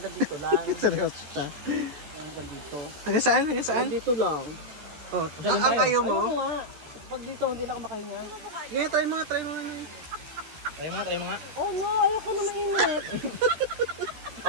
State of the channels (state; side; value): late; left; 13 ms